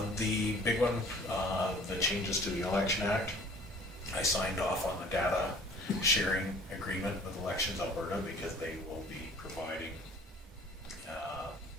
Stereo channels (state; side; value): normal; both; correlation 0.50